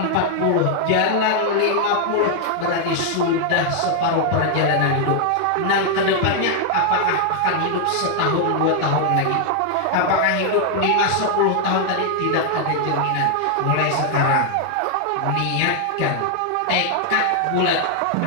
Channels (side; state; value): both; different; correlation 0.00